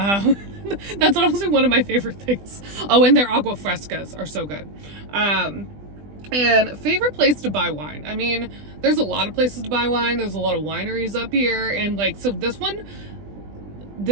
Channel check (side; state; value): left; late; 20 ms